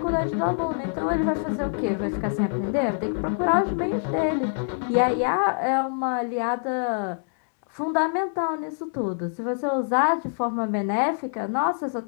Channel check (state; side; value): silent; right; digital silence